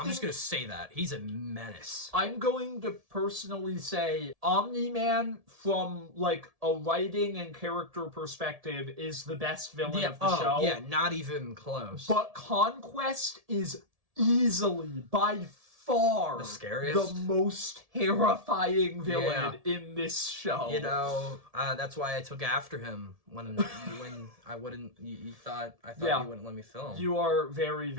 going to say that. He's a menace. I'm going to personally say Omni-Man, from a writing and character perspective, is the best villain of the show. Yeah, not even close. But Conquest is easily, by far, the scariest, the most terrifying villain in this show. That's why I took after him when I wouldn't. I thought you wouldn't let me film. You are very,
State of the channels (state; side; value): late; left; 1.7 ms